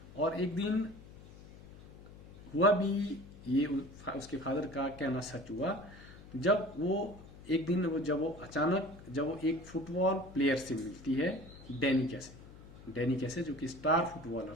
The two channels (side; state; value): left; noise; hum, 18 dB below the sound